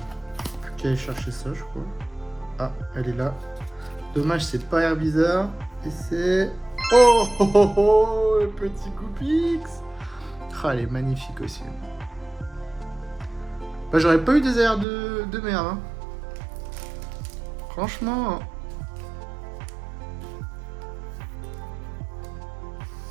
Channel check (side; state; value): left; drops out; at 14.9 s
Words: Plus qu'à aller chercher ça je crois. Ah, elle est là. Dommage c'est pas Air Bizarre. Et c'est... Oh, oh, oh, oh, le petit Goopix. Ah, elle est magnifique aussi. Bah, j'aurais pas eu des airs de merde. Hein. Franchement.